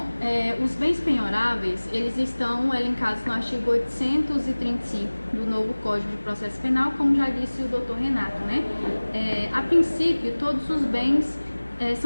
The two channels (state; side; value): inverted; both; correlation -1.00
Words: Os bens penhoráveis, eles estão elencados no artigo 835 do novo Código de Processo Penal, como já disse o doutor Renato, né? A princípio, todos os bens